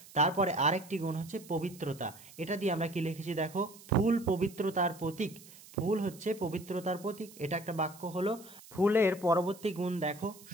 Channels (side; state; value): right; noise; hiss, 20 dB below the sound